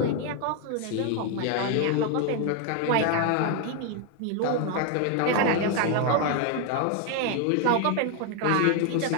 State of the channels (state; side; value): different; both; correlation 0.01